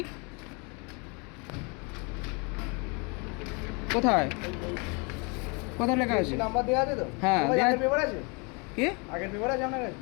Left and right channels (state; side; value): quieter; right; 31.8 dB